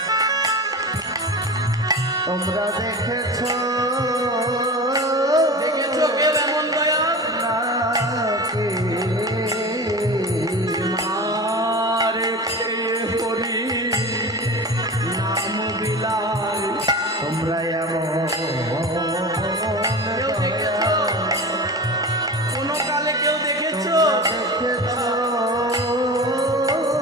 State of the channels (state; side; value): normal; both; correlation 0.31